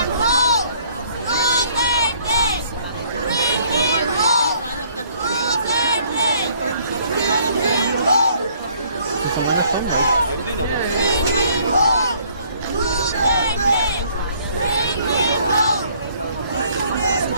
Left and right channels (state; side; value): inverted; both; correlation -0.61